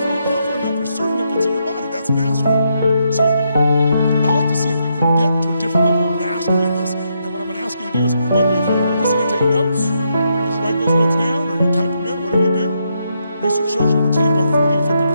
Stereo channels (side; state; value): both; inverted; correlation -0.79